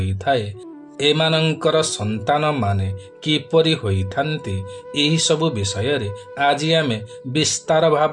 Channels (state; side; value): identical; both; correlation 1.00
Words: थाए एमानंकर संतान माने किपरि होई थांती एही सब विषय रे आज आमे विस्तार